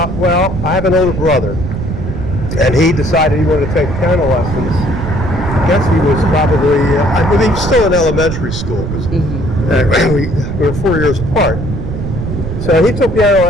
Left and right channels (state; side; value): noise; right; rumble, 5 dB below the sound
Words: I have an older brother, and he decided he wanted to take piano lessons. I guess he was probably, he was still in elementary school, because we were 4 years apart. So he took piano